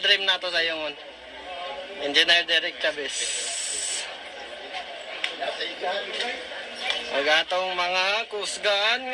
na to sa yung Engineer Derek Chavez. Magatong mga kusgan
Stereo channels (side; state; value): both; identical; correlation 1.00